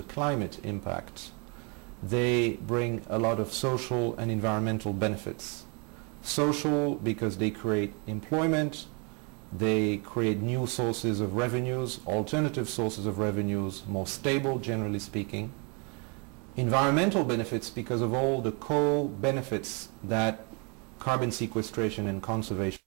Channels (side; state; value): left; quieter; 33.6 dB